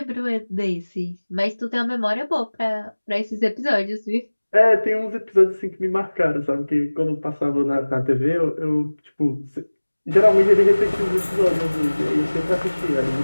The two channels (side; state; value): both; inverted; correlation -1.00